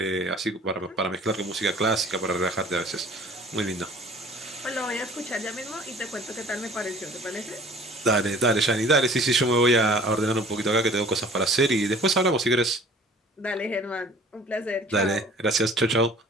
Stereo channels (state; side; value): normal; both; correlation 0.49